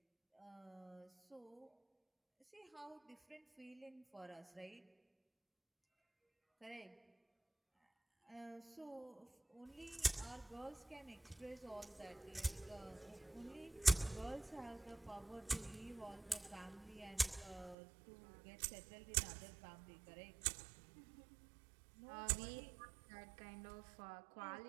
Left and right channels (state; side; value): drops out; left; at 17.8 s